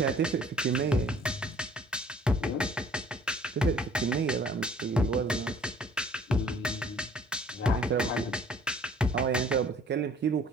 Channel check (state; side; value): normal; both; correlation 0.55